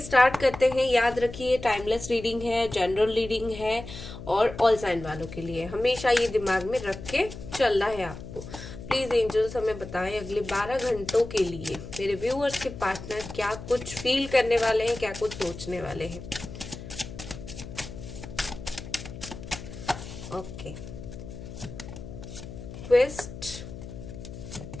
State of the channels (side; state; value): left; noise; hum, 12 dB below the sound